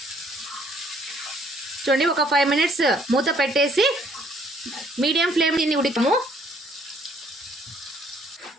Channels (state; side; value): normal; both; correlation 0.63